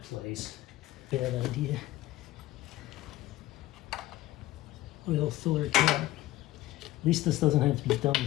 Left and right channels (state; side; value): quieter; right; 16.3 dB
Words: place. Bad idea. Oil filler cap. At least this doesn't have to be done